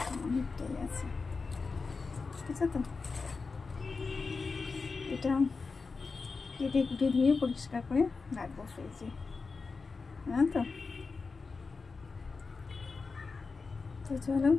অনেকটাই আছে, ঠিক আছে। তো এটা কেটে কুটে ধুয়ে পরিষ্কার করে রাখবো ফ্রিজে, হ্যাঁ। তো চলো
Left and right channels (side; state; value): right; quieter; 4.4 dB